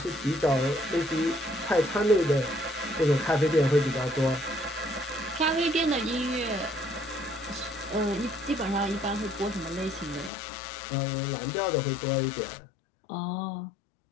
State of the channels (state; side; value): drops out; right; at 10.3 s